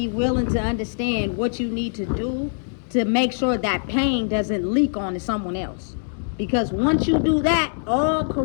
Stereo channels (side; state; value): right; silent; digital silence